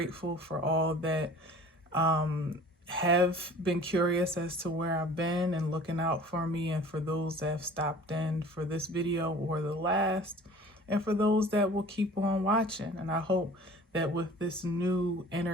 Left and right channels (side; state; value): both; normal; correlation 0.46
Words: for all that have been curious as to where I've been and looking out for me, and for those that have stopped in for this video or the last, and for those that will keep on watching. And I hope that with this new